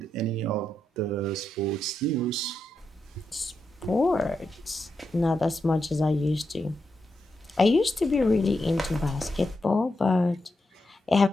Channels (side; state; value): both; normal; correlation 0.85